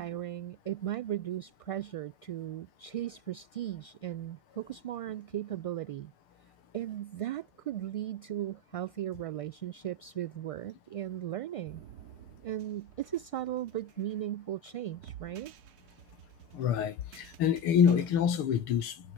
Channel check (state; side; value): late; right; 6.7 ms